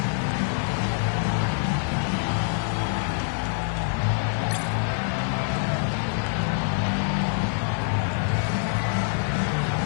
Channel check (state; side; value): silent; right; digital silence